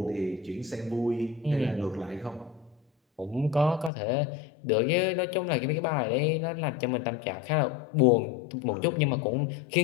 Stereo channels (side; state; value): right; drops out; at 3.9 s